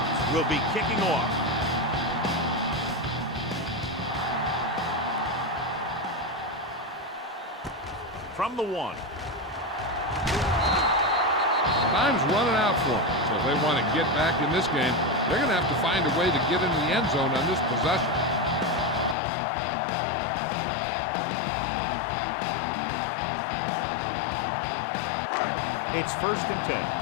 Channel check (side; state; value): right; drops out; at 19.2 s